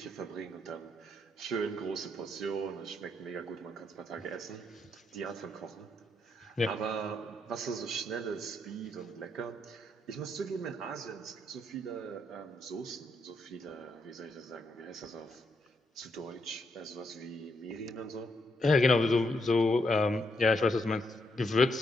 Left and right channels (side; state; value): both; normal; correlation 0.77